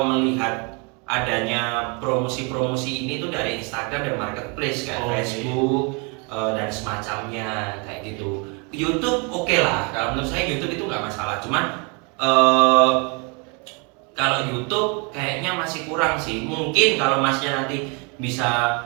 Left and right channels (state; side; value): quieter; left; 32.7 dB